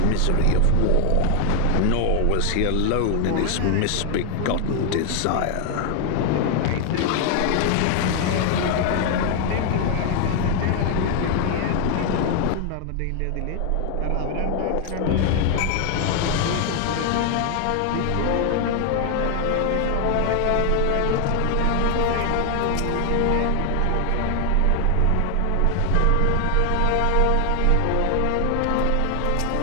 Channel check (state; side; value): different; both; correlation 0.00